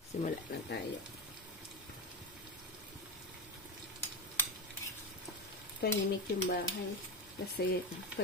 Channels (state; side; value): normal; both; correlation 0.18